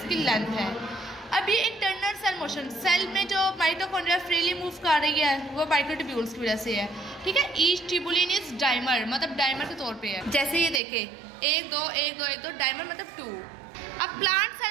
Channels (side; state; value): left; drops out; at 10.8 s